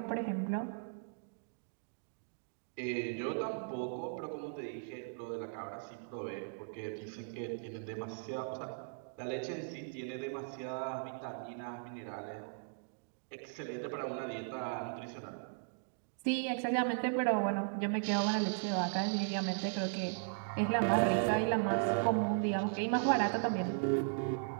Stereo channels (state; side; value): silent; left; digital silence